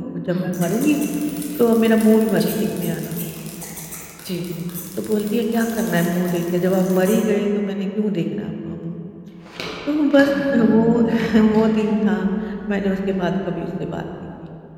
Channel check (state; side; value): identical; both; correlation 1.00